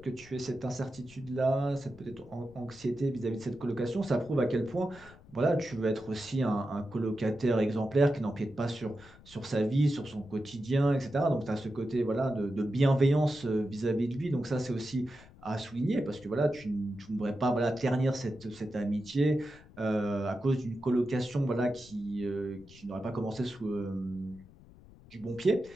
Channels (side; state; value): left; noise; rumble, 22 dB below the sound